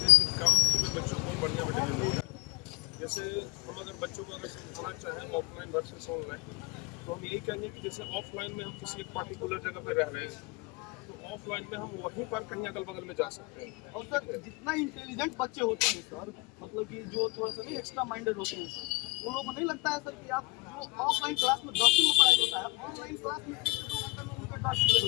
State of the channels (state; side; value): quieter; right; 24.5 dB